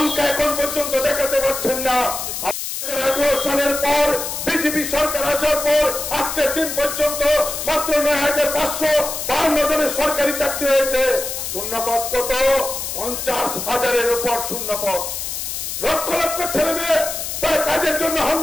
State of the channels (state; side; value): noise; left; hiss, 5 dB below the sound